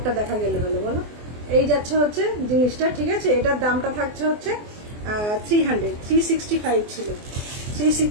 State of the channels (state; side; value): late; left; 24 ms